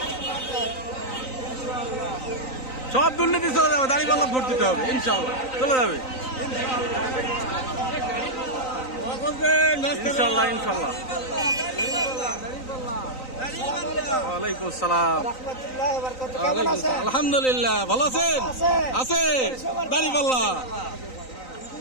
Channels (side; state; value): right; late; 3.9 ms